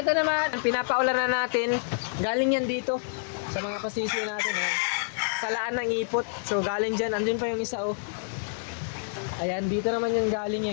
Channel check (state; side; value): silent; right; 56 dB below the other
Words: naman, pinapaulan na natin. Galing yan dito sa mga pasisyo natin, ayan. Salaan ng ipot. So galing dyan, andun pa yung isa, oh. Ayan, dito naman yan galing